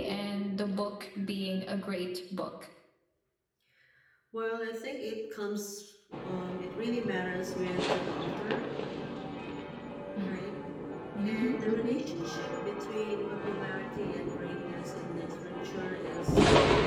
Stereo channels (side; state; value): both; identical; correlation 1.00